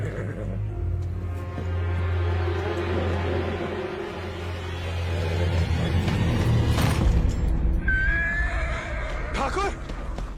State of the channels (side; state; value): both; identical; correlation 1.00